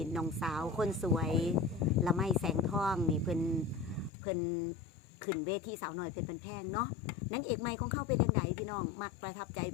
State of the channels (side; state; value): right; drops out; at 4.1 s